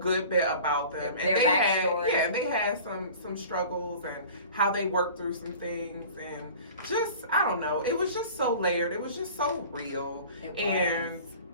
bit about them. Their backstory. They had some struggles and how they worked through some things, and just, I don't know, it was just so layered. It was just so real. And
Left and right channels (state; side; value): inverted; both; correlation -0.42